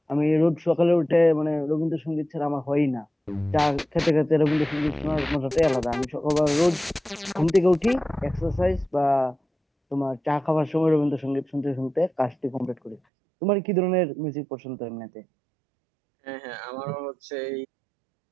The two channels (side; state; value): left; drops out; at 13.0 s